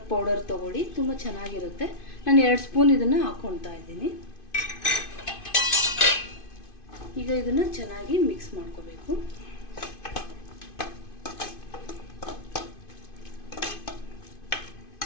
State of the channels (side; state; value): right; late; 2.5 ms